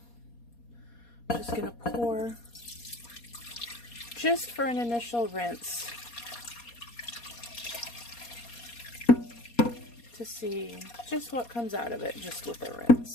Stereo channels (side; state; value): right; late; 4.2 ms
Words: I'm just going to pour just for an initial rinse to see just what comes out of it just with a